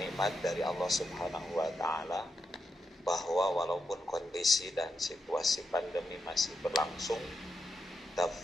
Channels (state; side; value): normal; both; correlation 0.85